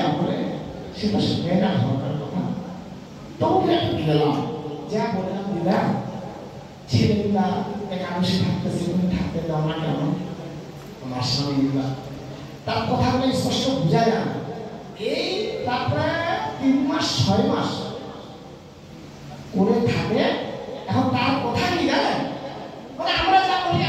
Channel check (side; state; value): both; identical; correlation 1.00